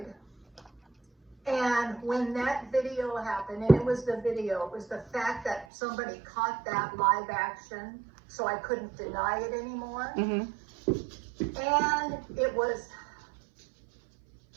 And when that video happened, and it was the fact that somebody caught that live action, so I couldn't deny it anymore. Mm-hmm. And it was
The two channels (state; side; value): drops out; left; at 5.7 s